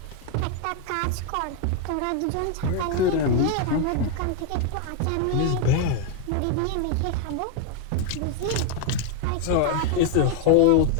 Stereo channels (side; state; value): both; different; correlation 0.01